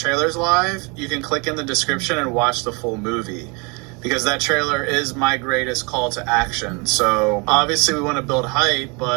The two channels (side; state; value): left; quieter; 30.7 dB